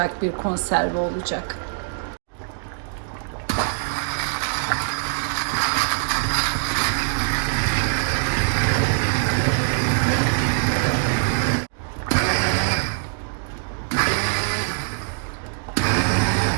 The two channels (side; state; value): left; silent; digital silence